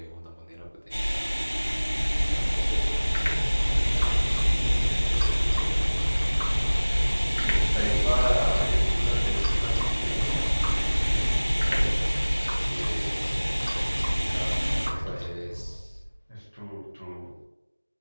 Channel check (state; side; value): inverted; both; correlation -1.00